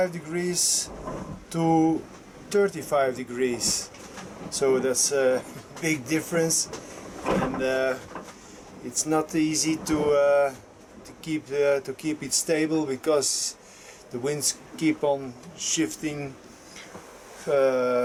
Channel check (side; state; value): both; identical; correlation 1.00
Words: degrees to 35 degrees, so that's a big difference, and it's not easy to keep it stable because the winds keep on shifting,